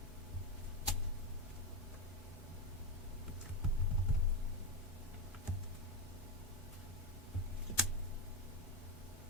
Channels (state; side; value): normal; both; correlation 0.11